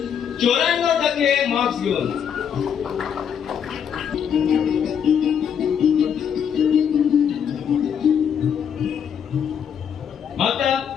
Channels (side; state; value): right; quieter; 8.0 dB